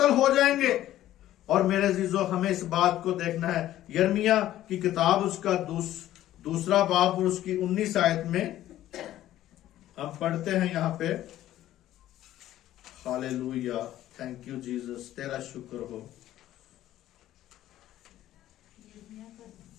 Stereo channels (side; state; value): right; quieter; 13.5 dB